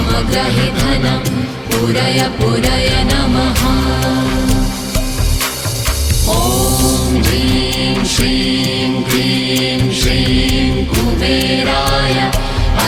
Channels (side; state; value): both; identical; correlation 1.00